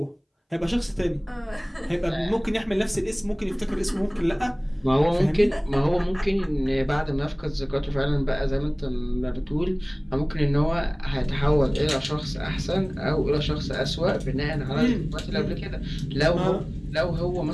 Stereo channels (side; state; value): both; identical; correlation 1.00